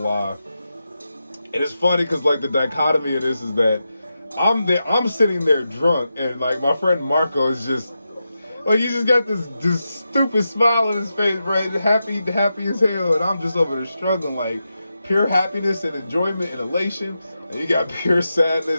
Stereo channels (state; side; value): inverted; both; correlation -0.89